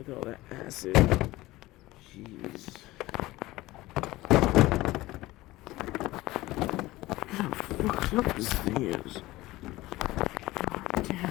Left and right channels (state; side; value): quieter; right; 18.4 dB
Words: at all that acid. Jeez. How fucked up this thing is.